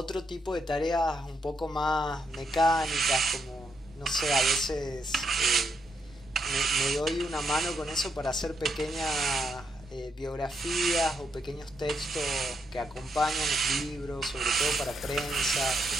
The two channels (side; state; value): both; normal; correlation 0.79